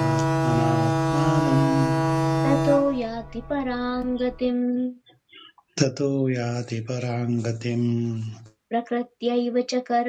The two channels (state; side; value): identical; both; correlation 1.00